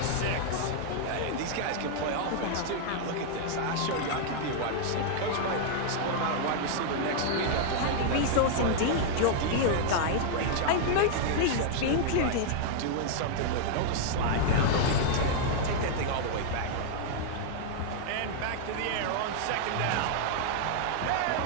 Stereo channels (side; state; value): both; different; correlation -0.01